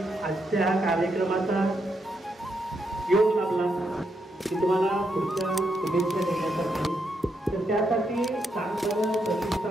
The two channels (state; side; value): normal; both; correlation 0.80